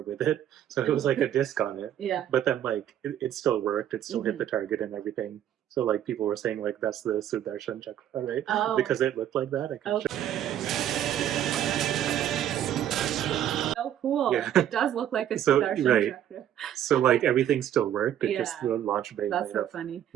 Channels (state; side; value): quieter; left; 10.9 dB